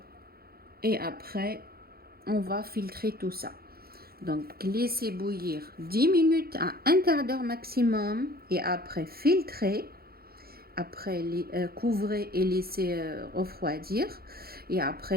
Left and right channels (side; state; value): left; late; 0.44 ms